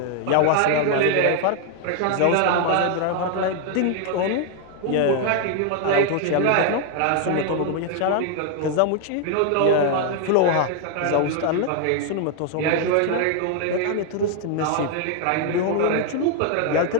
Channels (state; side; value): different; both; correlation 0.00